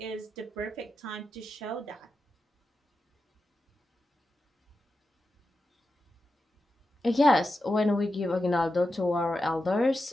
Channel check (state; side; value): normal; both; correlation 0.90